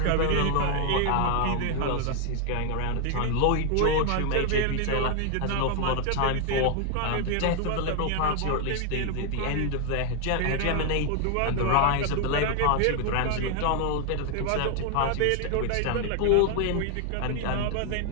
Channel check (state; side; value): different; both; correlation 0.00